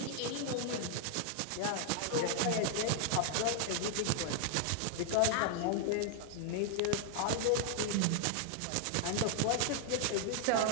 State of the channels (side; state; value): both; different; correlation 0.00